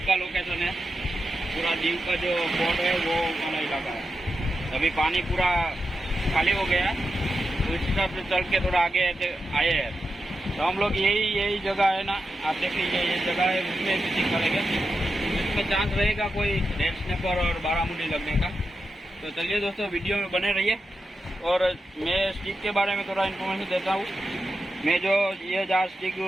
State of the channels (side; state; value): both; normal; correlation 0.89